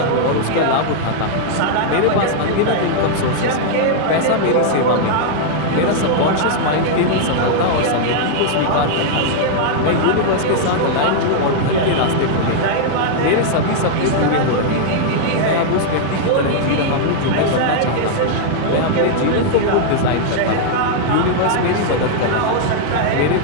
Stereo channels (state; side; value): different; both; correlation -0.01